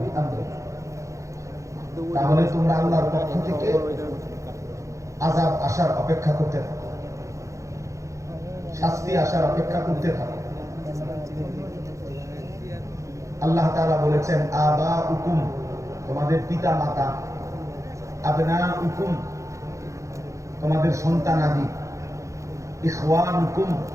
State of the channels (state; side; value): late; left; 0.15 ms